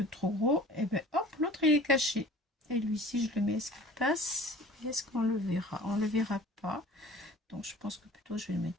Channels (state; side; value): normal; both; correlation 0.45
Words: trop gros, et ben hop, l'autre il est caché. Et lui, si je le mets, est-ce qu'il passe? Est-ce qu'on le verra? On le verra pas. Donc je pense que plutôt je vais le mettre